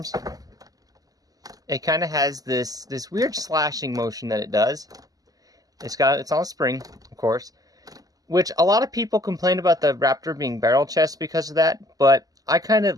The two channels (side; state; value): left; late; 0.17 ms